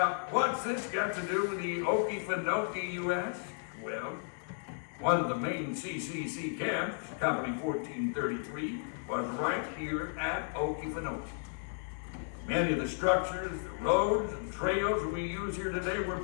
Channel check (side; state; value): right; silent; digital silence